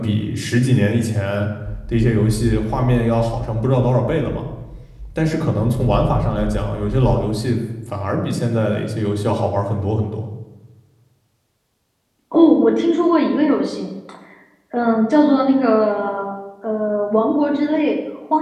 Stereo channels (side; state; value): both; identical; correlation 1.00